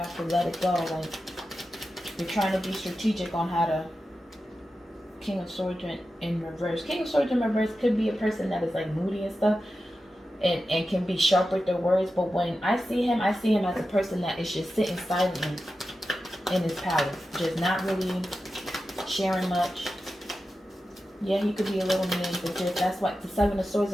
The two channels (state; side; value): normal; both; correlation 0.92